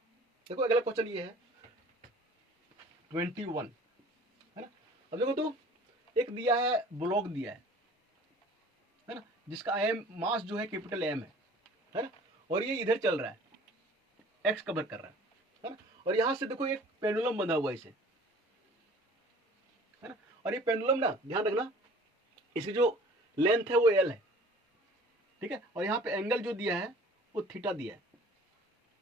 देखो, अगला क्वेश्चन ये है 21, है ना। अब देखो तो एक दिया है, ब्लॉक दिया है ना, जिसका एम मास जो है कैपिटल एम है ना, और ये इधर चल रहा है, एक्स कवर कर रहा है ना, और यहां से देखो एक पेंडुलम बंधा हुआ है इसे, है ना, और ये पेंडुलम ना ध्यान रखना, इसकी जो लेंथ है वो एल है, ठीक है, और यहाँ पे एंगल जो दिया है वो थीटा दिया है,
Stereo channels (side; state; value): both; normal; correlation 0.48